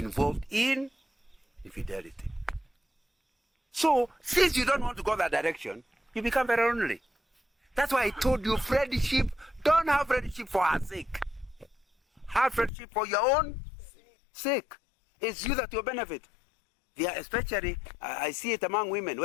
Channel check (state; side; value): drops out; right; at 12.7 s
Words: in infidelity. So, since you don't want to go that direction, you become very lonely. That's why I told you friendship, don't have friendship for her sake. Have friendship for your own sake. It's you that will benefit. Especially, I see it among women